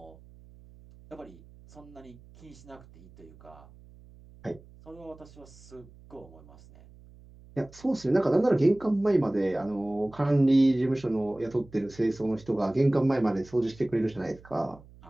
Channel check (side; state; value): right; noise; hum, 23 dB below the sound